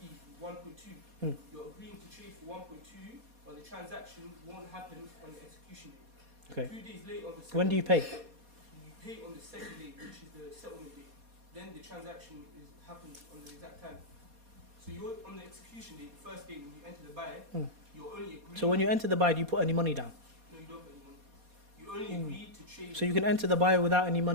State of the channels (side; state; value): left; late; 4.2 ms